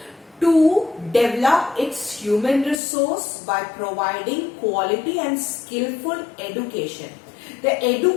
to develop its human resource by providing quality and skillful education. The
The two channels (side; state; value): right; drops out; at 2.8 s